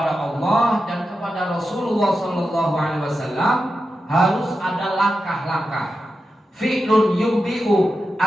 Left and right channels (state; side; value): normal; both; correlation 0.90